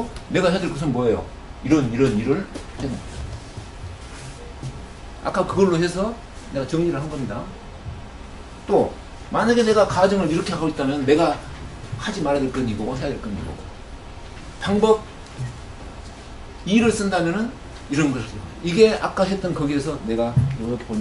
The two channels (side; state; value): both; identical; correlation 1.00